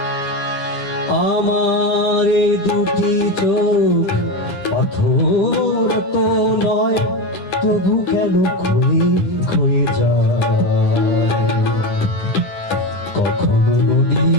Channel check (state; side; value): late; right; 9.8 ms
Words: এই দুটি চোখ পাথর তো নয়, তবু কেন ক্ষয়ে ক্ষয়ে যায়। কখনো